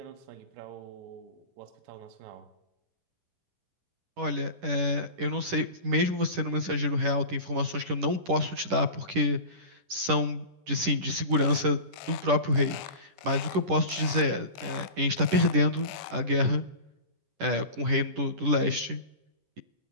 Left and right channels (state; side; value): late; left; 10 ms